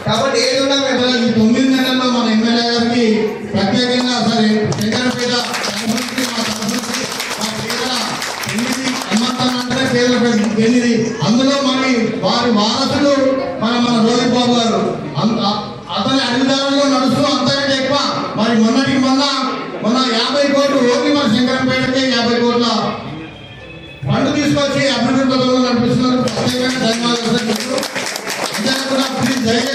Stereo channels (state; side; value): identical; both; correlation 1.00